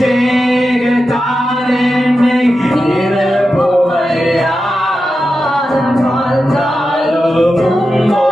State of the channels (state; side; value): normal; both; correlation 0.91